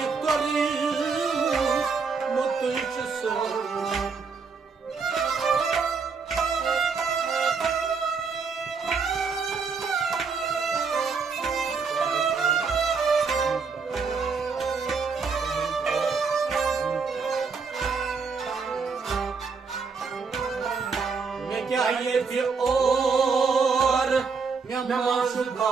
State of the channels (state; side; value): quieter; left; 5.1 dB